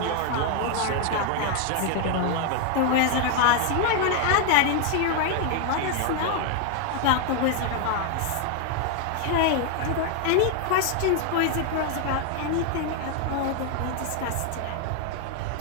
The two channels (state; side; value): different; both; correlation 0.00